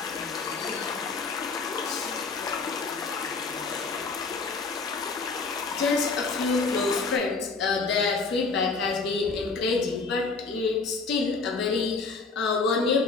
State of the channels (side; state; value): right; quieter; 4.2 dB